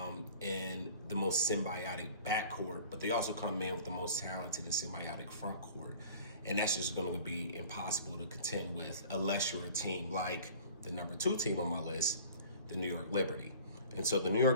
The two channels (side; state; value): both; inverted; correlation -0.45